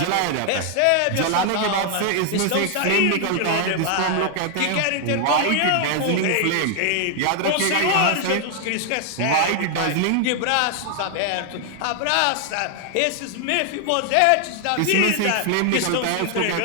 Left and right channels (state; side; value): different; both; correlation 0.00